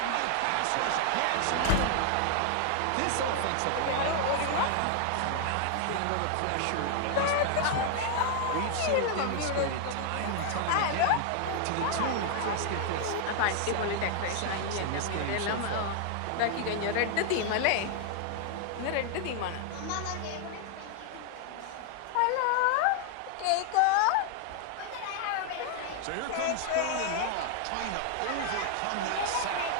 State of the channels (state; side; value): different; both; correlation 0.00